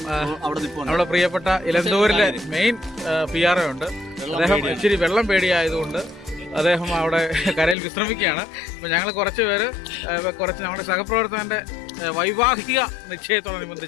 നമ്മുടെ പ്രിയപ്പെട്ട ഇലന്തൂരിലെ മെയിൻ PRO ഉണ്ട്. അദ്ദേഹം ഇച്ചിരി വെള്ളം പേടിയായതുകൊണ്ട് അദ്ദേഹം അവിടെ കരയിൽ വിശ്രമിക്കുകയാണ്. അപ്പം ഞങ്ങൾ കുറച്ച് നമ്മുടെ സഹപ്രവർത്തകൻ്റെ വൈവാഹിക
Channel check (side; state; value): right; drops out; at 7.8 s